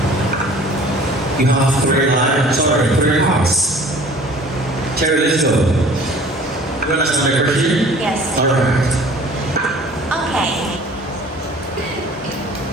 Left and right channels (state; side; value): normal; both; correlation 0.48